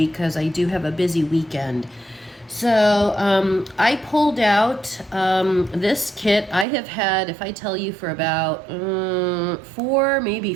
because I do have a busy weekend. So I pulled out this kit I have had, if I tell you, for about 4, maybe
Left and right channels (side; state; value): left; drops out; at 6.7 s